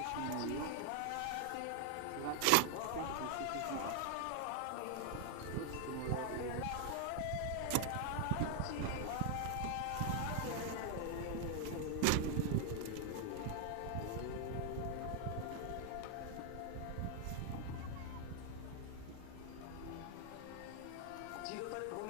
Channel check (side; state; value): both; different; correlation 0.00